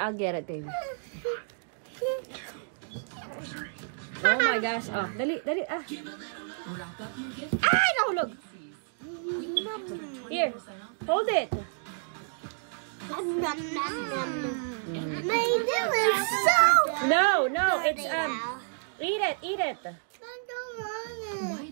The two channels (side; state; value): left; silent; digital silence